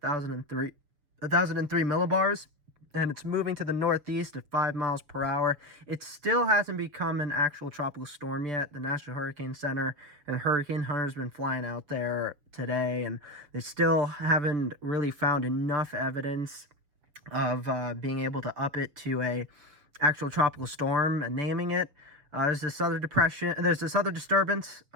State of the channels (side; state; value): left; late; 7.0 ms